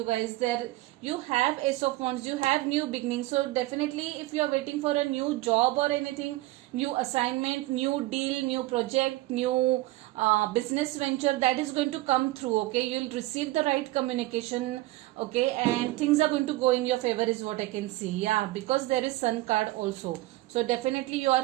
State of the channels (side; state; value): left; quieter; 18.3 dB